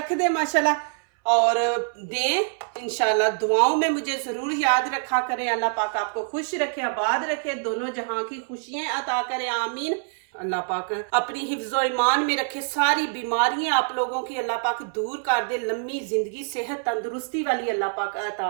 दे माशाल्लाह और दें। इंशाल्लाह दुआओं में मुझे ज़रूर याद रखा करें। अल्लाह पाक आपको खुश रखे, आबाद रखे, दोनों जहां की खुशियां अता करे, आमीन। अल्लाह पाक अपनी हिफ्ज़ो ईमान में रखे, सारी बीमारियां आप लोगों की अल्लाह पाक दूर कर दे, लंबी जिंदगी, सेहत, तंदुरुस्ती वाली अल्लाह पाक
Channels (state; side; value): silent; left; 62 dB below the other